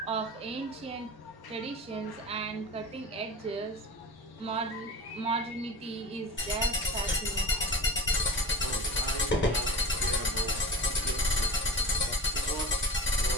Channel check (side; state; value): both; normal; correlation 0.36